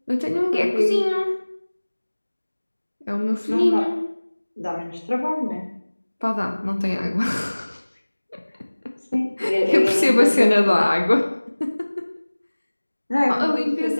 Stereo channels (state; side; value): inverted; both; correlation -1.00